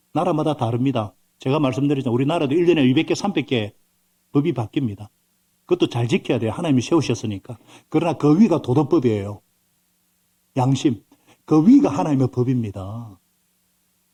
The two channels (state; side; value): identical; both; correlation 1.00